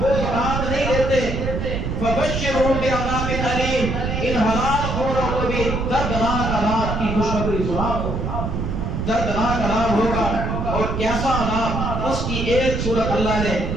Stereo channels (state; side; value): noise; right; rumble, 2 dB below the sound